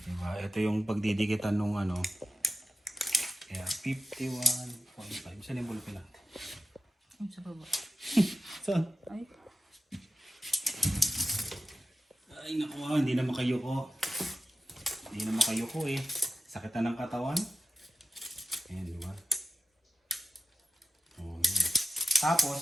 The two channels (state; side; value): normal; both; correlation 0.90